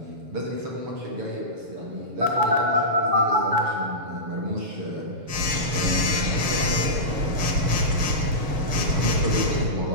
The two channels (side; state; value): left; late; 6.5 ms